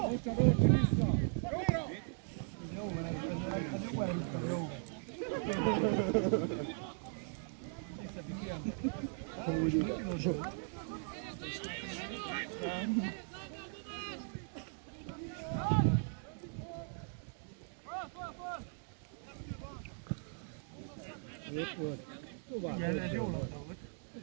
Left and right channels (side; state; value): left; silent; 52 dB below the other